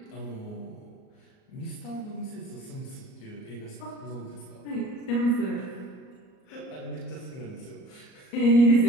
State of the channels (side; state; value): right; late; 38 ms